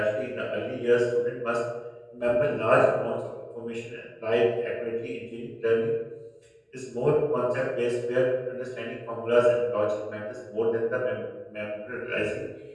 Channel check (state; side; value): identical; both; correlation 1.00